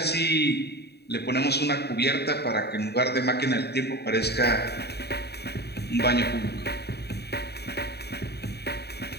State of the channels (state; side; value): late; right; 0.48 ms